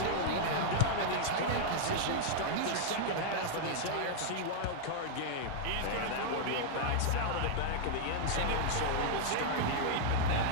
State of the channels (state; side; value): different; both; correlation -0.01